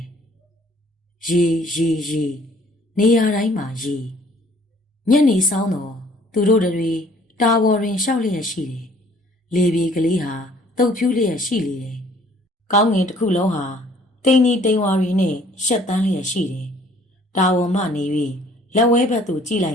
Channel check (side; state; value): both; normal; correlation 0.58